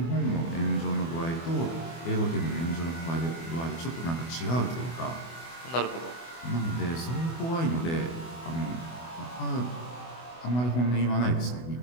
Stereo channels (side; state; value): right; late; 24 ms